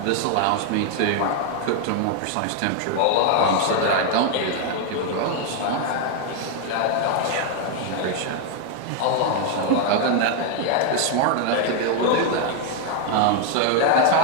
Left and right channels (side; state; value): both; different; correlation 0.00